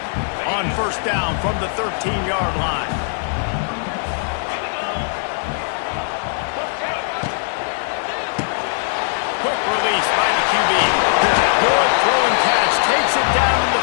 On first down from the 13-yard line. Quick release by the QB. Good throw and catch. Takes it down to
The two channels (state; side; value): silent; right; digital silence